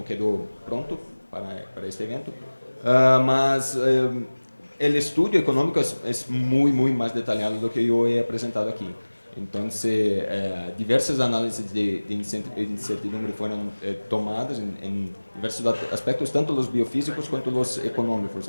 quedou pronto para este evento, mas o estudo econômico é muito mais detalhado do que eu he apresentado aqui. Então, diversas análises de incertidumbre foram tomadas em diversos aspectos, tanto os biofísicos quanto os econômicos.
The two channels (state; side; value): inverted; both; correlation -1.00